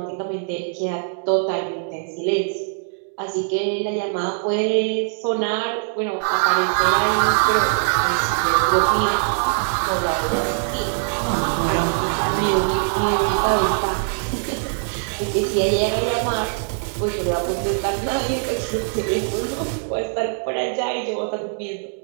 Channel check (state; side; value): silent; left; digital silence